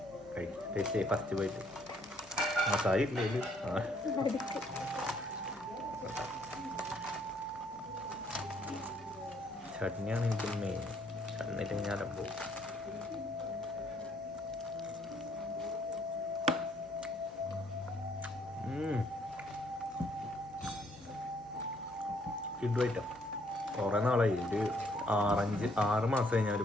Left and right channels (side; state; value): left; noise; hum, 29 dB below the sound